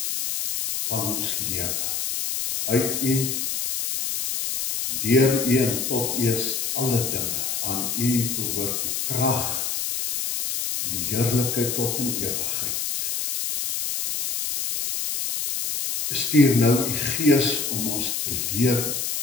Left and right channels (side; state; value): left; noise; hiss, 2 dB below the sound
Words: van ons lewe. Uit U, deur U en tot U is alle dinge. Aan U behoort die krag, die heerlikheid tot in ewigheid. Stuur nou U Gees om ons te leer